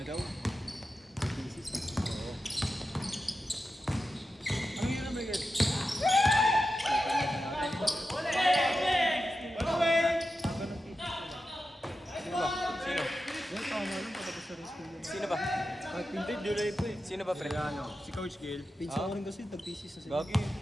daw. Oo. Anong yun naman yan? Sino? Yan, tama lang patapos sa rin school yan. Sino ba? At hindi, July po eh. Sino ba, pre? Kaya ano, si Coach Gil. Pinsan Ah? ko rin kasi, tag-thesis na sila. Gagi,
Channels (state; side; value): normal; both; correlation 0.91